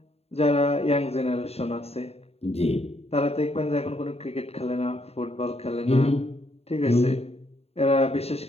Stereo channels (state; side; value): late; right; 0.30 ms